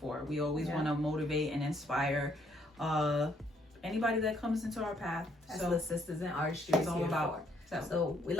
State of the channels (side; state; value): both; normal; correlation 0.69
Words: We always want to motivate and inspire anybody that comes into our path. That's what Sistas in Artistry is all about. So we